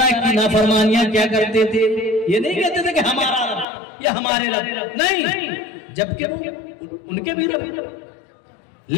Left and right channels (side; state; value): right; drops out; at 3.7 s